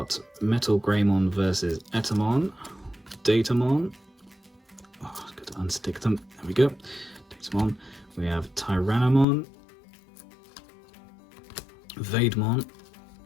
Metal Greymon versus Datamom, Datamon. Oh, I've got to unstick them. There we go. Datamon. We have Tyrannomon, Vegemon,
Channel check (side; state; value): right; drops out; at 9.2 s